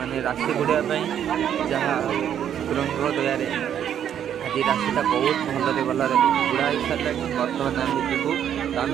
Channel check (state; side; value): quieter; left; 9.6 dB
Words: राशि बुड़ापी जहाँ ठाकुर दयारे आज राशिटा बहुत भलरे भलरे बुढ़ा हो सारे बर्तमान आम जीवु आम